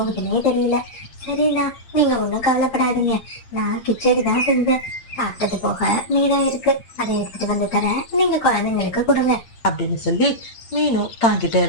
தெரியல. சரிண்ணா, நீங்க ஒண்ணும் கவலைப்படாதீங்க. நான் கிச்சடி தான் செஞ்சேன். சாப்பிட்டது போக மீதம் இருக்கு, அதை எடுத்துட்டு வந்து தரேன், நீங்க குழந்தைங்களுக்கு கொடுங்க அப்படின்னு சொல்லி மீனு தாங்கிட்ட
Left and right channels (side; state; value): right; late; 8.7 ms